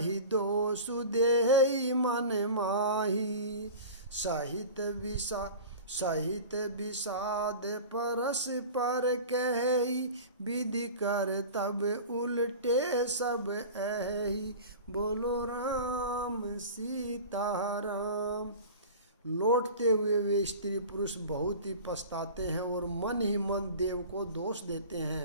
दोषु देहि मन माही। सहित विषाद परस पर कही, विधि कर तब उल्टे सब एहि। बोलो राम सीताराम। लौटते हुए वे स्त्री पुरुष बहुत ही पछताते हैं और मन ही मन देव को दोष देते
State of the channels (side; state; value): both; inverted; correlation -0.36